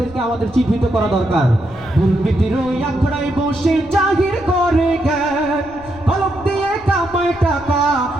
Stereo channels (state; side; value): noise; left; rumble, 20 dB below the sound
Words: আমাদের চিহ্নিত করা দরকার। দুর্নীতির ওই আখড়ায় বসে জাহির করে জ্ঞান, কলম দিয়ে কামায় টাকা